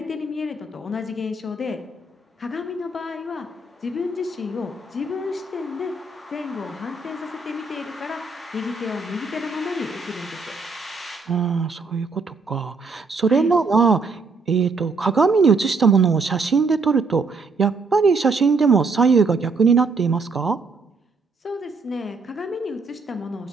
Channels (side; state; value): left; quieter; 3.9 dB